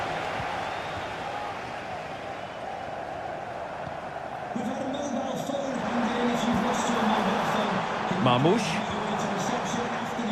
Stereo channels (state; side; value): identical; both; correlation 1.00